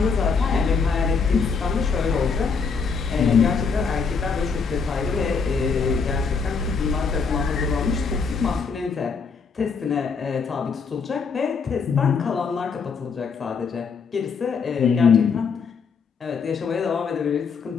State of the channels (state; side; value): quieter; right; 5.4 dB